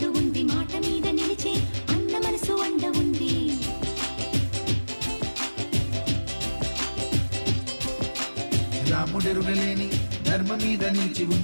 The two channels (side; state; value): both; inverted; correlation -1.00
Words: ఉంది మాట మీద నిలిచే అన్న మనసు అండ ఉంది రాముడెరుగలేని ధర్మ మీద నిలిచి